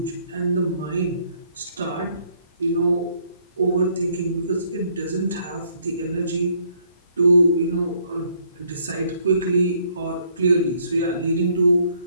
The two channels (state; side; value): inverted; both; correlation -0.66